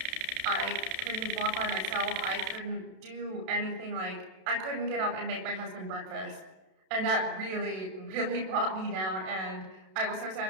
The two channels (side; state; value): left; late; 32 ms